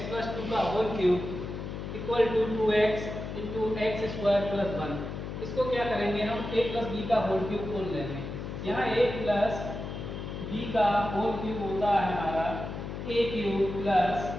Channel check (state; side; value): noise; left; hum, 7 dB below the sound